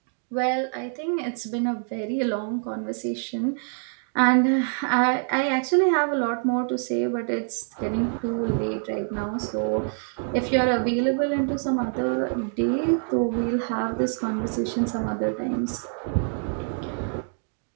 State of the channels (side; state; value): left; silent; 61 dB below the other